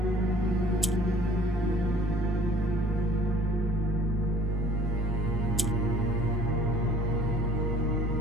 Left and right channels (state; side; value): normal; both; correlation 0.53